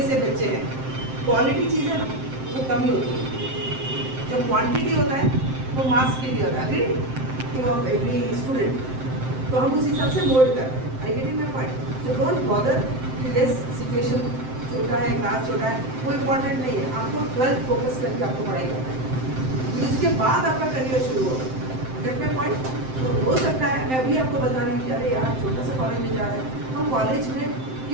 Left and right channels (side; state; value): left; late; 7.7 ms